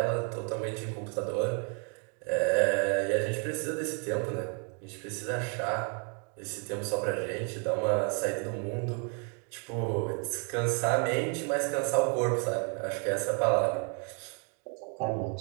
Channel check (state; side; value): quieter; left; 39.2 dB